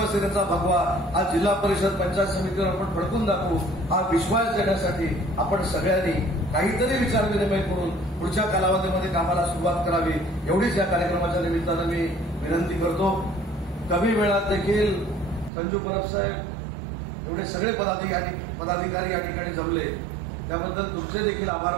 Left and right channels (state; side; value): drops out; left; at 15.5 s